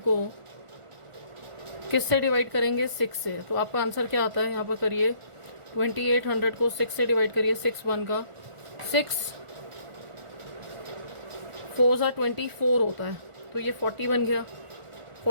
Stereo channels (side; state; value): left; late; 1.4 ms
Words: किससे डिवाइड करेंगे, 6 से। तो आपका आंसर क्या आता है, यहाँ पर करिए 2800 को 6 से डिवाइड करिए। 6 1 का 6 4 सा 24 होता है, तो ये 40 बन गया।